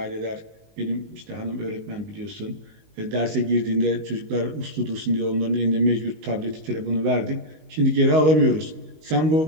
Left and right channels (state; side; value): late; left; 19 ms